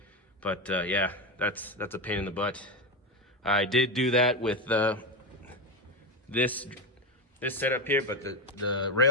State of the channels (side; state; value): both; normal; correlation 0.13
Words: But yeah, that's a pain in the butt. I did do that with this setup here, but the